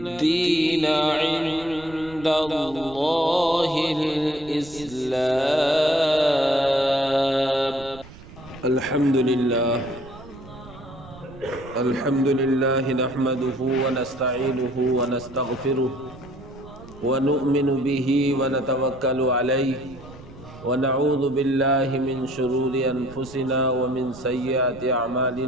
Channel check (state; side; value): noise; right; rumble, 19 dB below the sound